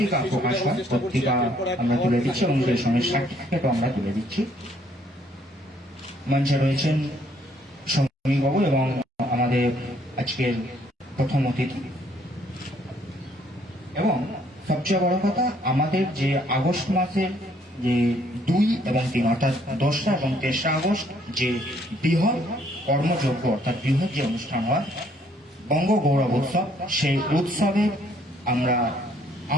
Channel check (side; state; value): both; normal; correlation 0.65